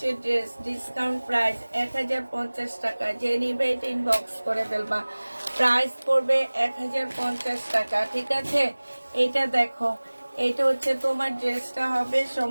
ড্রেস, ডিসকাউন্ট প্রাইস 1050 টাকা। যে নিবে এটা ইনবক্স করে ফেলবা। প্রাইস পড়বে 1050 টাকা, ঠিক আছে। এটা দেখো, এটা হচ্ছে তোমার ড্রেসটা হবে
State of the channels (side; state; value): both; inverted; correlation -1.00